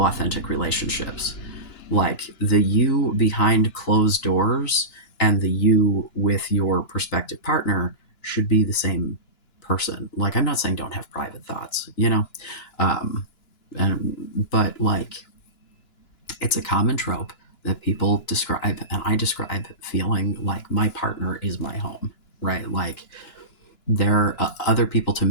authentic relationships. Like, the you behind closed doors and the you with your prospective partner should be the same person. Like, I'm not saying don't have private thoughts, um, and, but like, it's a common trope that people describe, and I describe, feeling like my partner is my home, right? Like, they're other people to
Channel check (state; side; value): late; right; 2.9 ms